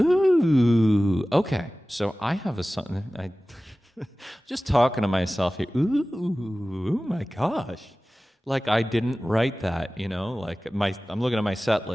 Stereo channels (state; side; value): normal; both; correlation 0.97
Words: okay. So I have a song. I just talking to myself here. Ooh, oh my gosh! Like I didn't write that, Like I'm looking at my set